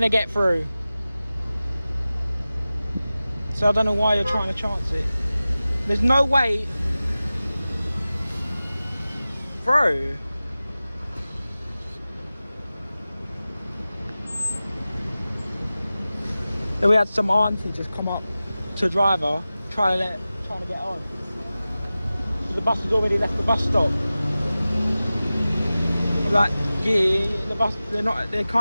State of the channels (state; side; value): inverted; both; correlation -0.96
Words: to get through. So I don't know why you're trying to chance it. There's no way through. Then we had some auntie just come up to a driver trying to get on. So the bus has already left the bus stop. I'm like, yeah, the bus they